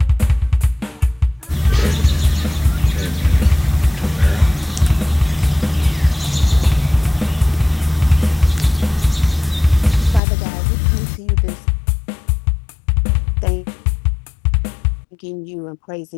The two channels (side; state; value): right; drops out; at 10.2 s